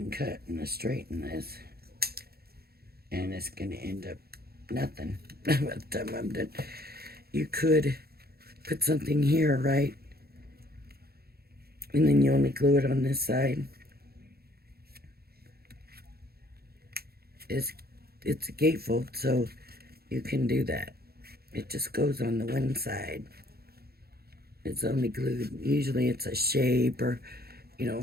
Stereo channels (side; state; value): left; late; 0.45 ms